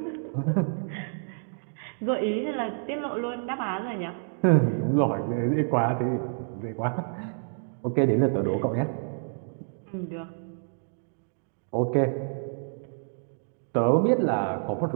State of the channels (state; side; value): silent; left; digital silence